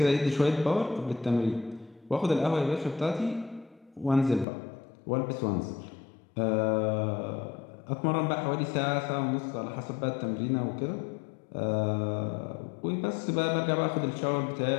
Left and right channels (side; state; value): right; drops out; at 4.5 s